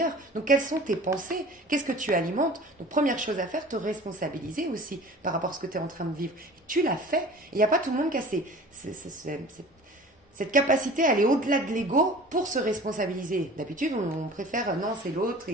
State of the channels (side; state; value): both; normal; correlation 0.43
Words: Donc, quelles sont tes pensées? Qu'est-ce que tu alimentes? Donc, première chose à faire, te responsabiliser aussi par rapport à ce que tu es en train de vivre. Et tu l'as fait. Il n'y a pas tout le monde qui a cette capacité à aller au-delà de l'ego pour se responsabiliser. D'habitude, on préfère, non, c'est l'autre